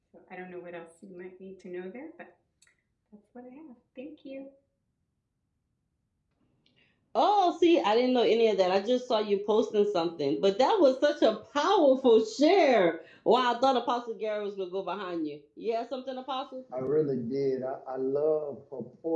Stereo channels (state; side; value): identical; both; correlation 1.00